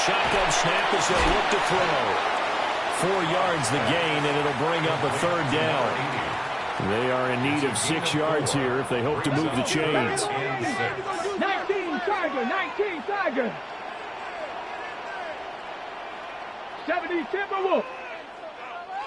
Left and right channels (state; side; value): identical; both; correlation 1.00